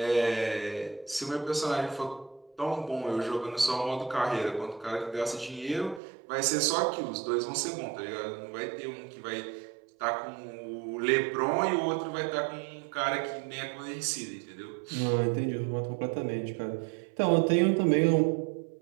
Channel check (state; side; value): drops out; left; at 6.0 s